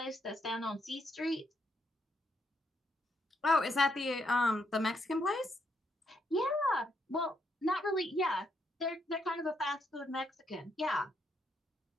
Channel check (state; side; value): normal; both; correlation 0.76